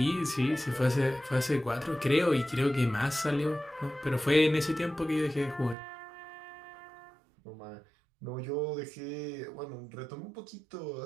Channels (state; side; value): drops out; left; at 5.8 s